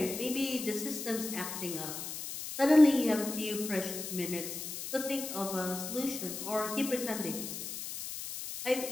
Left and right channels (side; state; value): left; noise; hiss, 7 dB below the sound